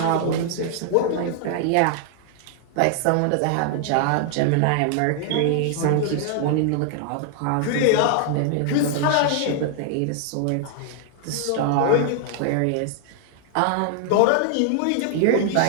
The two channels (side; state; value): both; different; correlation 0.00